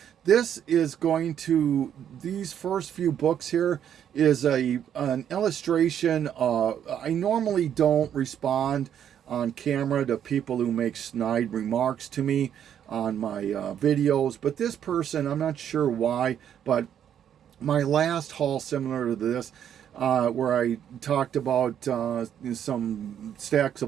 this is going to, these first few books here is an illustration. I normally don't respond on camera to people who make snide remarks to me on my videos. But this person, I'm not sure why, but my last haul similar to this, where I talked about some stacks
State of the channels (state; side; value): quieter; left; 9.4 dB